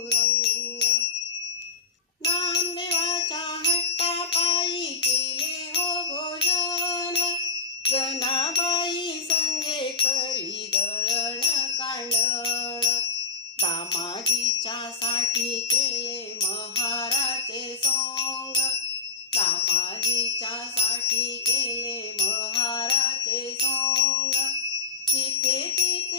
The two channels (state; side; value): quieter; right; 4.5 dB